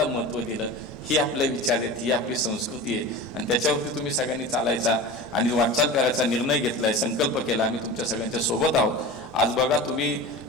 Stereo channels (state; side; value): normal; both; correlation 0.32